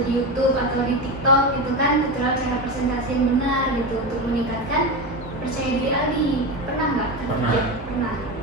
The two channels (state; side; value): normal; both; correlation 0.19